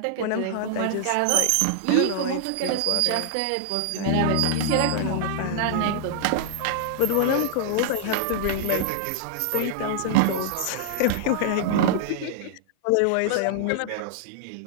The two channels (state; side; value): different; both; correlation -0.01